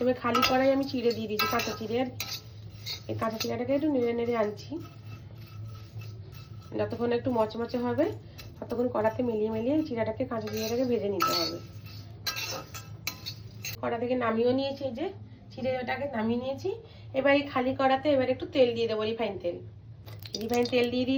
খালি কড়াই আমি চিড়ে দিয়ে দিয়েছি, কাঁচা চিড়ে। আর এই কাঁচা চিড়াটাকে একটু নেড়ে নেড়ে আনছি, যতক্ষণ একটু মচমচে হবে ততক্ষণ কড়াতে মিলিয়ে মিলিয়ে চিড়াটাকে, কাঁচা চিড়াটাকে ভেজে নিতে হবে। কড়া থেকে নামিয়েও নিয়েছি, এই যে চিড়েটাকে নামিয়ে নিয়েছি। এবার এই খালি কড়াতে এবার একটু তেল দিয়ে দেবো, রিফাইন তেল। রিফাইন তেল দিয়ে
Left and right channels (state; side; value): identical; both; correlation 1.00